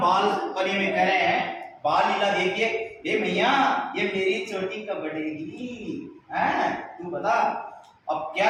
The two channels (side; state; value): both; identical; correlation 1.00